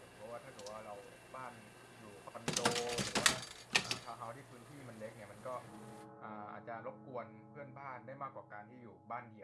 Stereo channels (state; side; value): identical; both; correlation 1.00